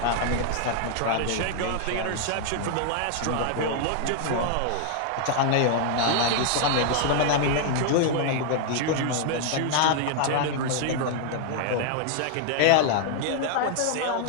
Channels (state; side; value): different; both; correlation 0.00